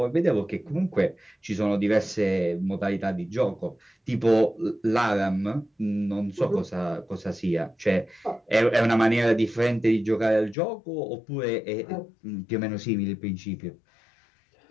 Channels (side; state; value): right; drops out; at 10.6 s